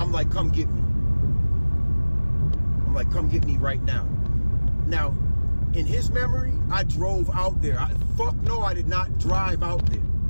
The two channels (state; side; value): inverted; both; correlation -1.00